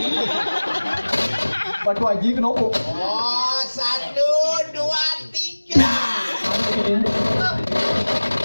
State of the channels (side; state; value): both; inverted; correlation -1.00